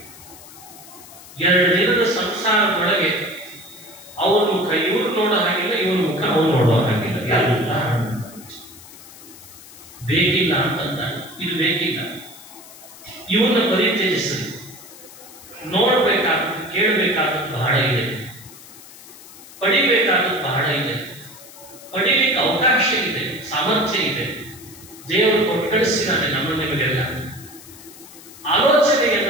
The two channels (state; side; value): noise; left; hiss, 19 dB below the sound